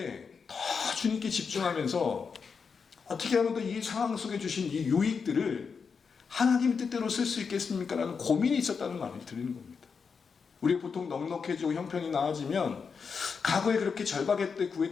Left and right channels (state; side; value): quieter; right; 5.7 dB